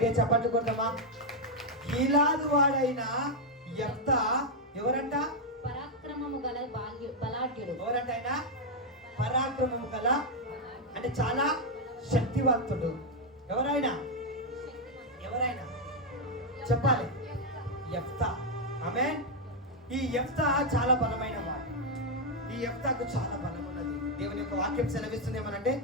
చప్పట్లు కొడతామా? గిలాదు వాడైన యెఫ్తా ఎవరంట? పరాక్రమము గల బలాఢ్యుడు. ఎవరంట ఆయన? పరాక్రమము గల అంటే చాలా శక్తివంతుడు. ఎవరైనా చెప్పాలి? యెఫ్తా. ఆమేన్. ఈ యెఫ్తా చాలా బలమైన వాడు. ఈ యెఫ్తాకు చాలా బలం ఉన్నది. దేవుని యొక్క వాక్యం సెలవిస్తుంది ఏమనంటే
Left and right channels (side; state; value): both; normal; correlation 0.00